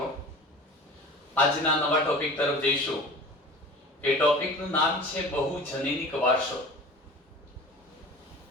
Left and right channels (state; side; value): normal; both; correlation 0.40